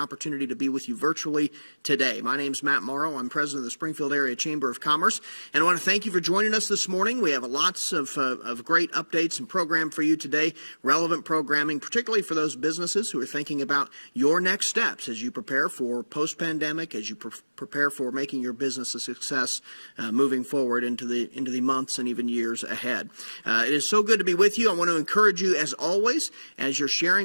to be with you virtually today. My name's Matt Morrow. I'm president of the Springfield Area Chamber of Commerce. And I want to thank you for joining us this morning. We have lots of great updates and program for you today, relevant programming, particularly for those businesses who are thinking about your next steps as you prepare for post-pandemic, as you prepare for making your business a success moving forward into the months and even years ahead. It is so good to be with you. I want to encourage you, as always, as you're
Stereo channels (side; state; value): both; inverted; correlation -1.00